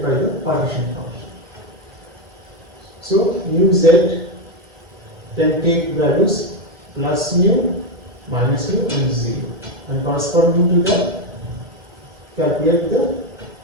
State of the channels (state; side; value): normal; both; correlation 0.08